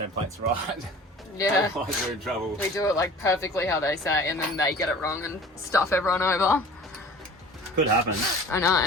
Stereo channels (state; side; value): normal; both; correlation 0.43